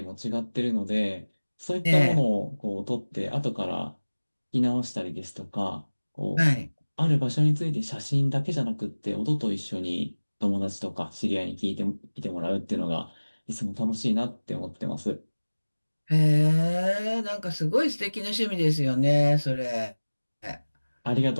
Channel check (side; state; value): both; inverted; correlation -1.00